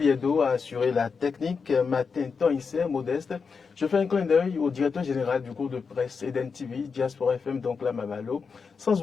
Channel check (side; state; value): right; quieter; 5.4 dB